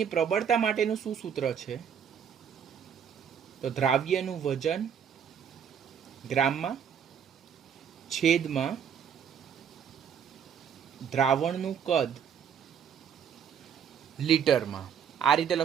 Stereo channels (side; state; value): left; quieter; 7.9 dB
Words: પ્રબળતા માટેનું શું સૂત્ર છે? તો દ્રાવ્યનું વજન ગ્રામમાં છેદમાં દ્રાવણનું કદ લીટરમાં. આ રીતે